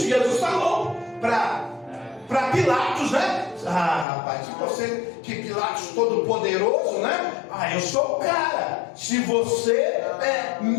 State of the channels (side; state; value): right; drops out; at 4.0 s